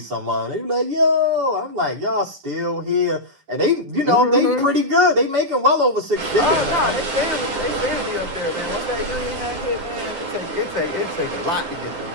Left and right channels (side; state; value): left; late; 9.7 ms